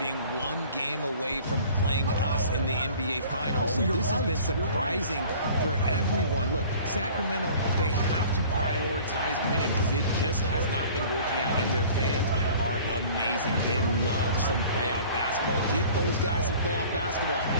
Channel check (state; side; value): inverted; both; correlation -0.47